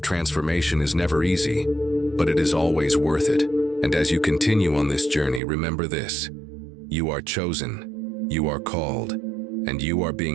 transformation is never easy, but it is always worth it. And as you continue on this journey, remember this: you are chosen, you are called, and you are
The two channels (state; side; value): drops out; left; at 5.4 s